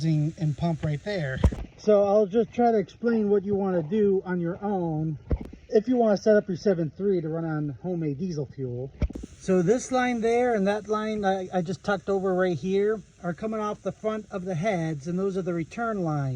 and pump right there. So I'll just try to explain what you want to do on your own if you want to set up your 7.3 to run on homemade diesel fuel. So this line there and that line I just tucked over right here are coming off the front of the heads, and those are the return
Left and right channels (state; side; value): identical; both; correlation 1.00